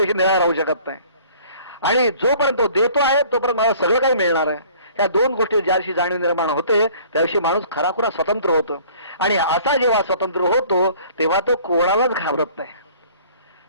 निराळा राहू शकत नाही. आणि जोपर्यंत तो देतो आहे तोपर्यंत मला सगळं काही मिळणार आहे. ह्या दोन गोष्टी ज्या दिवशी जाणीव निर्माण होते त्या दिवशी माणूस खराखुरा स्वतंत्र होतो. आणि असा जेव्हा स्वतंत्र होतो तेव्हा तो कोणालाच घाबरत नाही.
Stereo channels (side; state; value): both; inverted; correlation -0.53